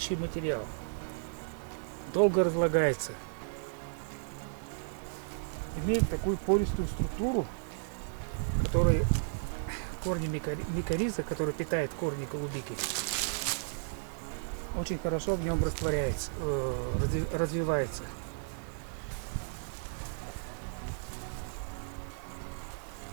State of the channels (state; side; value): silent; left; digital silence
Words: материал. Долго разлагается. Имеет такую пористую структуру, которая корни микориза, который питает корни голубики, очень хорошо в нем растворяется, развивается.